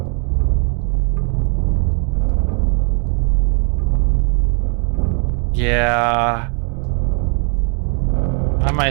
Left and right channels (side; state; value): left; quieter; 38.7 dB